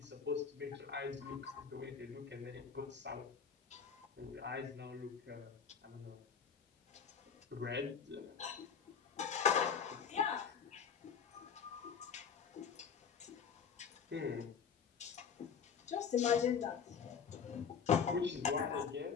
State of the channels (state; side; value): quieter; right; 6.8 dB